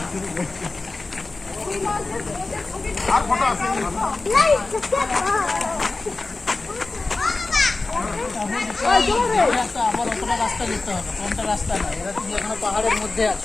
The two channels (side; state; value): right; quieter; 3.5 dB